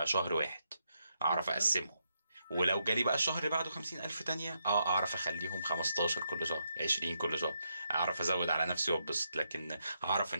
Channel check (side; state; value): both; inverted; correlation -0.81